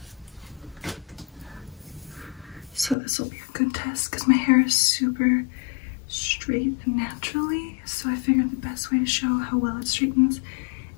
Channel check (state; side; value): drops out; right; at 3.0 s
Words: So this will be a good test because my hair is super straight naturally. So I figured the best way to show how well it straightens